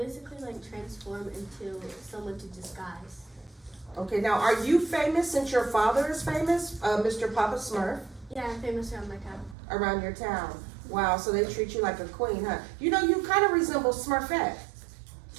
transform into someone to disguise. Okay, now are you famous since your father is famous, Mr. Papa Smurf, Yeah, I'm famous around my town. around your town? Wow, so they treat you like a queen, huh? You know, you kind of resemble Smurfette.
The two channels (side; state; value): left; drops out; at 9.6 s